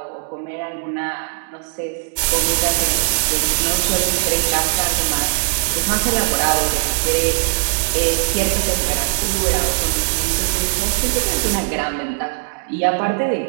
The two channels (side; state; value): left; silent; 62 dB below the other